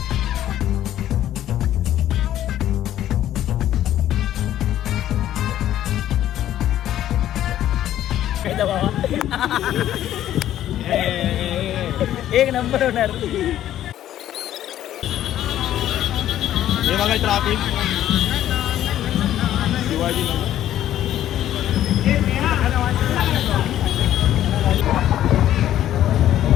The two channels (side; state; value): right; quieter; 12.2 dB